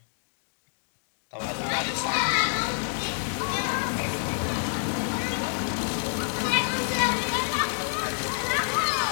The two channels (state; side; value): silent; right; 60 dB below the other